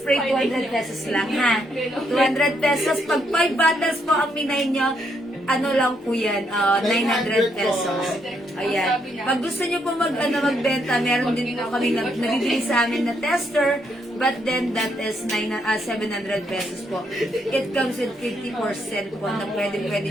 200 pesos lang, ha? 200 pesos. Pag 5 bottles po ang minay nyo, ano lang po yan, 900 pesos. Ayan. Pag gusto nyo po magbenta, meron din po kami nabibili sa amin na tester, but then that is 700 pesos po. It comes with 50% po na pwede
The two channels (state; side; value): normal; both; correlation 0.75